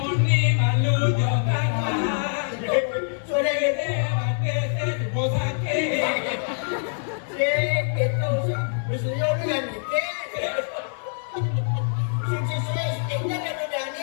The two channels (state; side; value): silent; right; 62 dB below the other